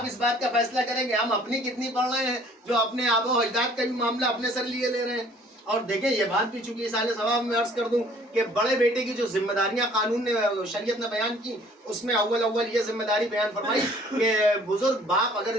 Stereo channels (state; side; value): normal; both; correlation 0.55